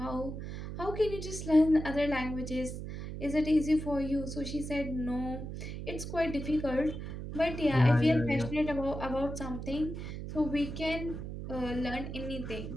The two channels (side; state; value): right; noise; hum, 7 dB below the sound